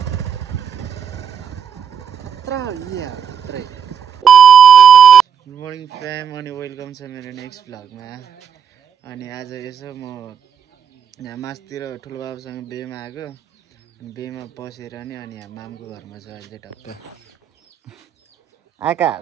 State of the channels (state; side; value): quieter; left; 7.9 dB